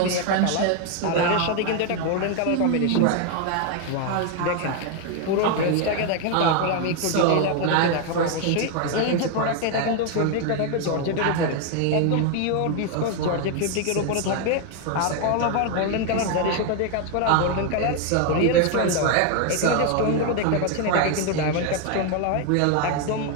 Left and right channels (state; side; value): different; both; correlation 0.01